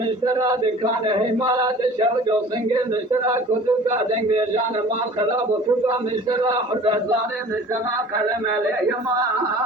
مشترى دكان همارات شوج وسنجل مشترى كتب قادم بيجان مال خراب وفقا مشترى حرزان مشترى كلام يما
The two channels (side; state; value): both; normal; correlation 0.45